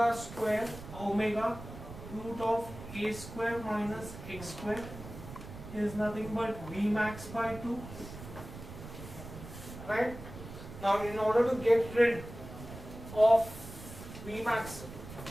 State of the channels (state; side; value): noise; right; rumble, 13 dB below the sound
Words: square, omega root of a square minus x square is nothing but v max by 2. Right? Now in order to get rid of v max,